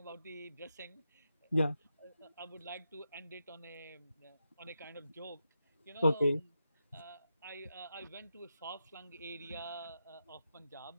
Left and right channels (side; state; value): both; inverted; correlation -0.87